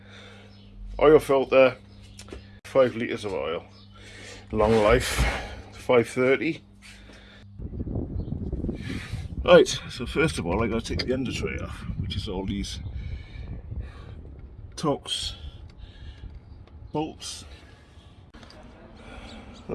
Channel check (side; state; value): both; identical; correlation 1.00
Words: Oil filter, 5 litres of oil. Long life, 530. Right, so first of all I got to take the Undertray off, which is all these Torx bolts.